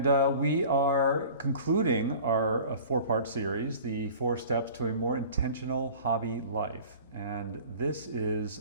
we are concluding our four-part series, the 4 Steps to a More Intentional Hobby Life. And this is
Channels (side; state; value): both; inverted; correlation -0.43